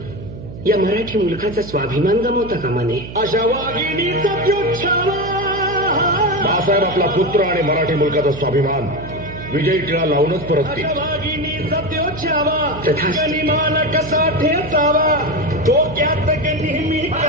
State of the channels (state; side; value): noise; right; hum, 12 dB below the sound